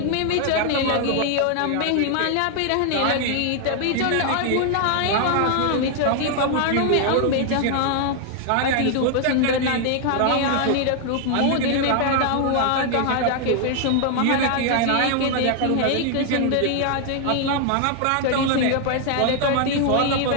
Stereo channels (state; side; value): different; both; correlation 0.00